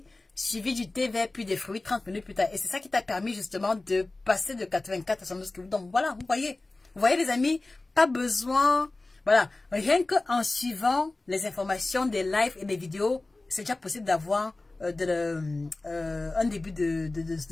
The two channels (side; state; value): right; quieter; 3.1 dB